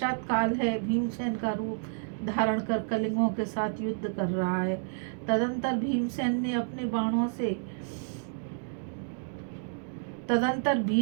काल है, भीमसेन का रूप धारण कर कलिंगों के साथ युद्ध कर रहा है। तदंतर भीष्म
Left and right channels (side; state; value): left; silent; digital silence